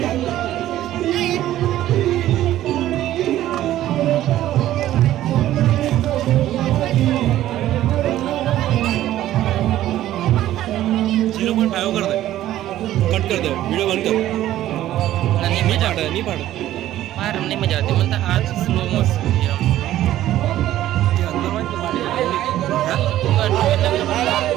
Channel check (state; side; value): quieter; left; 13.5 dB